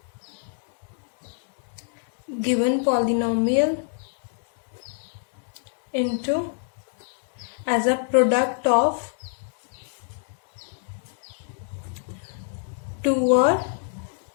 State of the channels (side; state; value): right; silent; digital silence